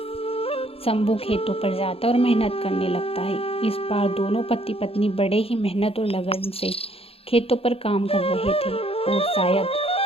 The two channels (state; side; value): late; right; 0.28 ms